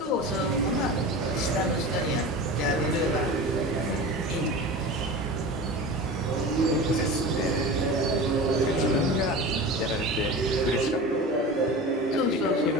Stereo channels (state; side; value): normal; both; correlation 0.32